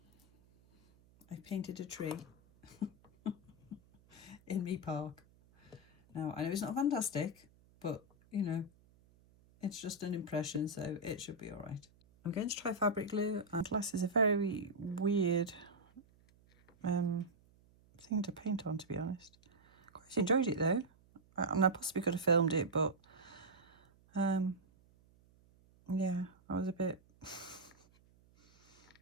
I've painted a tree in me park. Now, I know it's not fantastic, but, you know, it's just an impression, so it should be all right. I'm going to try fabric glue. And glass is a very weird thing to paint on, to be honest. Quite enjoyed it though. I possibly could have filmed it, but yeah, I was a bit,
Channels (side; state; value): right; noise; hum, 29 dB below the sound